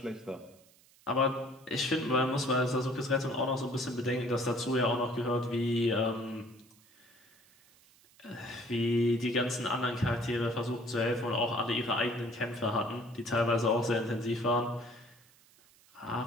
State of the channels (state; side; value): noise; right; hiss, 28 dB below the sound